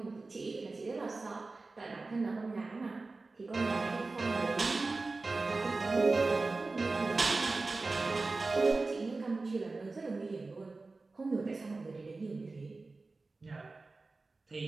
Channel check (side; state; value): left; quieter; 3.6 dB